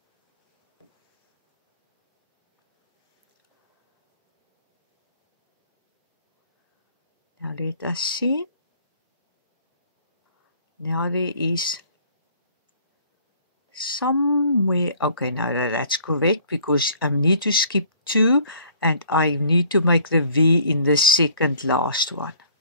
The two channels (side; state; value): both; inverted; correlation -0.56